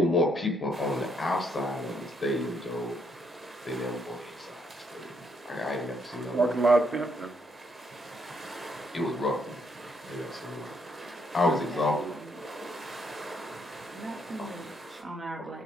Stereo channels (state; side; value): normal; both; correlation 0.73